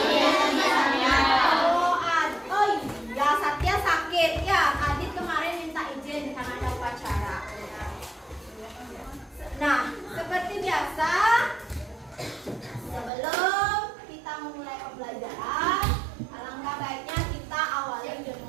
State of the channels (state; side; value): drops out; left; at 13.1 s